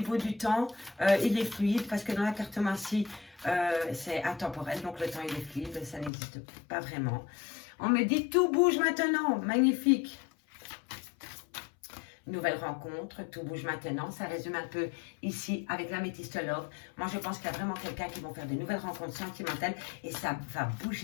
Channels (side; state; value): right; drops out; at 6.1 s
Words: du temps, il est fluide parce que dans la cartomancie, c'est intemporel. Donc, le temps, il est fluide. Ça n'existe pas vraiment. On me dit tout bouge maintenant. Magnifique. Nouvelle rencontre, tout bouge maintenant. Ça résume un peu ici avec l'Améthyste Love. Moi, je pense qu'il y a vraiment quelqu'un qui va faire de nouvelles rencontres sentimentales et ça va